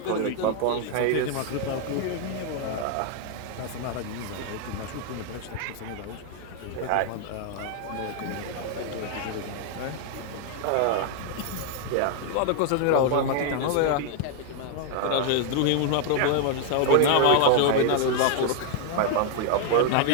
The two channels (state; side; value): different; both; correlation 0.00